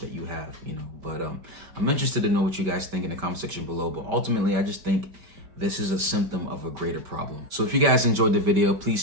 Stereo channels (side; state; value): left; late; 5.2 ms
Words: you have, But I'm interested to know what you guys think in the comment section below. But ultimately, I just think this is a symptom of a greater problem. So if you guys enjoyed the video, please